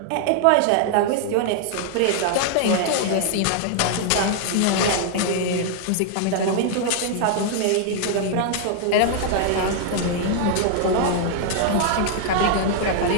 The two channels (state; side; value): different; both; correlation 0.00